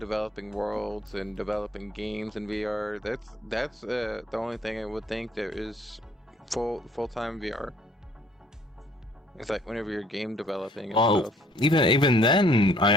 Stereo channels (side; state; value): both; normal; correlation 0.60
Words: worlds and developing games in VR, that's the only thing I would think there is full-time VR. It's like whenever you're game developing and stuff. Even then,